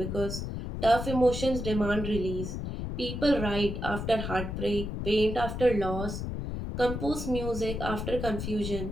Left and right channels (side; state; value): left; noise; rumble, 5 dB below the sound